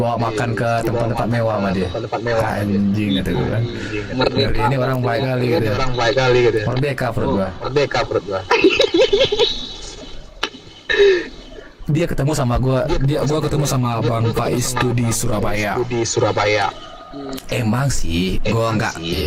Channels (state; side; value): identical; both; correlation 1.00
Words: makan ke tempat-tempat mewah sama dia. Anjing kata gua kan. Ngeri, ini orang baik kali gitu ya. Merdeka perut gua. Dia ketemu sama gua ketemu sama Bang Faiz tuh di Surabaya. Emang sih, gua nggak,